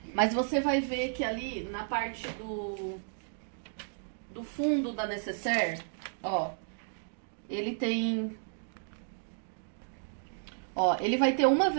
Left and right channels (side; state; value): left; silent; digital silence